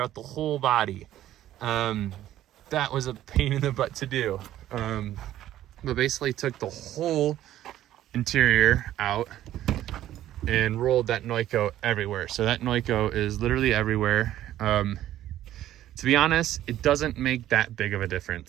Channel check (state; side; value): quieter; left; 13.0 dB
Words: the whole body. That was a pain in the butt to do. But basically took the whole interior out and rolled that Noiko everywhere. So that Noiko is literally everywhere. To be honest, it doesn't make that big of a